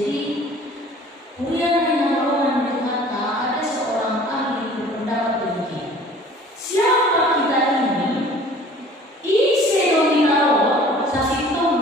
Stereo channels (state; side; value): normal; both; correlation 0.49